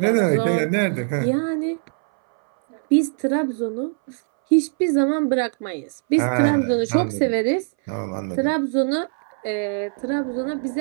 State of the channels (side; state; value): left; silent; 63 dB below the other